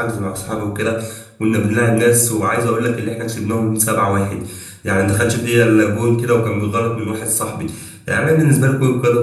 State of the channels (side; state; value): both; identical; correlation 1.00